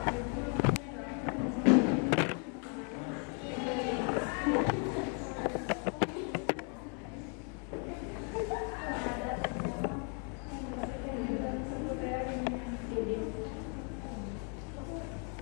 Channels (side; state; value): right; quieter; 39.4 dB